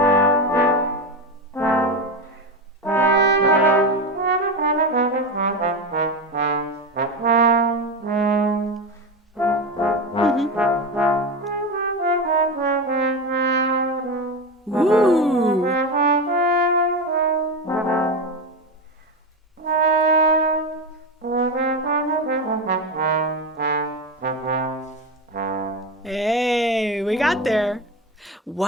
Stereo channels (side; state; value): both; normal; correlation 0.18